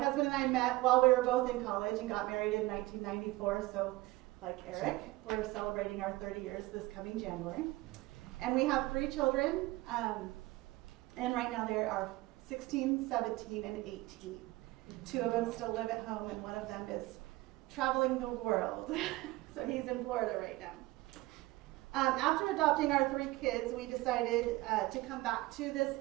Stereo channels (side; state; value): left; quieter; 19.7 dB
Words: and I met while we were both in college and got married in 1994. So, like Eric, we're celebrating our 30 years this coming January. And we have 3 children, and right now they are 16, 17, and 18. 2 of them still live at home, and one of them is traveling the world. So he's in Florida right now. After adopting our 3 kids, we decided to come back to this